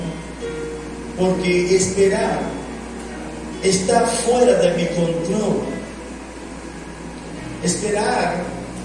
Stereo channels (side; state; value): both; identical; correlation 1.00